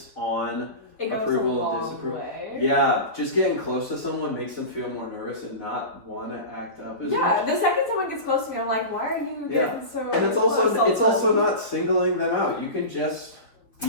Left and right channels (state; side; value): late; right; 4.0 ms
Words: on approval and disapproval, yeah, just getting close to someone makes them feel more nervous and not want to act up as much. The second someone gets close to me, I'm like, why are you getting so? And it's also not singling them out. You can just